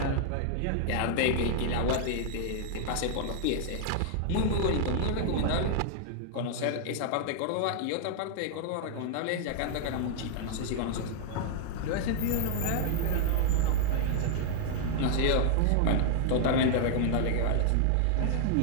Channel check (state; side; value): different; both; correlation -0.01